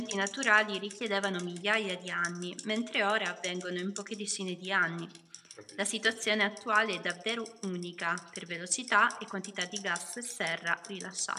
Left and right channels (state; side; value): identical; both; correlation 1.00